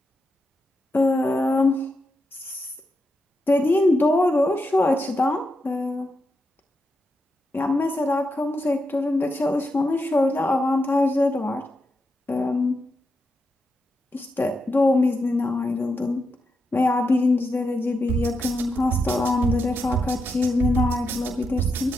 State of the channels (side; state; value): both; normal; correlation 0.85